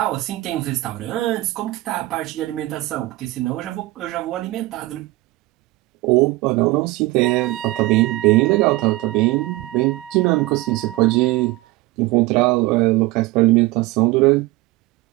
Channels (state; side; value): quieter; left; 19.7 dB